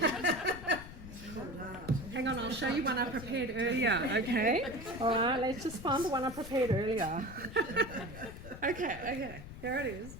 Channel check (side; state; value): left; noise; rumble, 13 dB below the sound